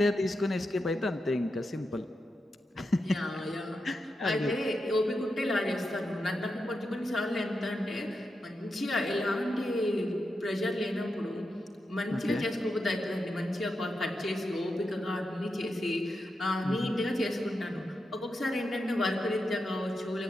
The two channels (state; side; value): normal; both; correlation 0.87